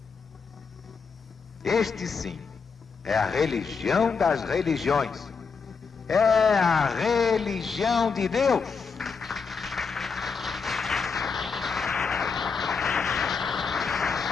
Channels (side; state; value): right; quieter; 5.3 dB